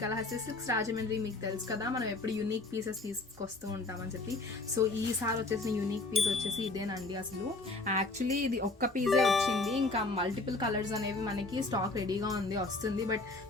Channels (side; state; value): right; quieter; 3.3 dB